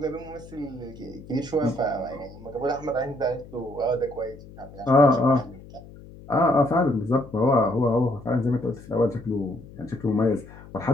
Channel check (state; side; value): noise; left; hum, 18 dB below the sound